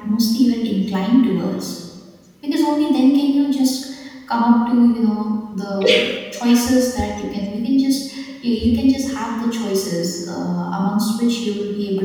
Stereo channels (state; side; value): identical; both; correlation 1.00